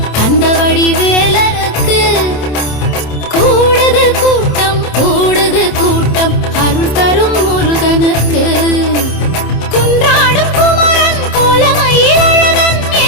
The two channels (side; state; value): right; late; 27 ms